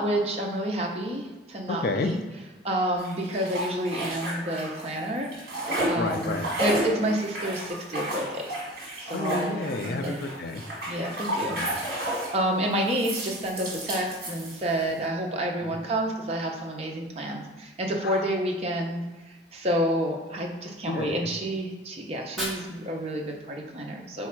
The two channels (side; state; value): both; normal; correlation 0.38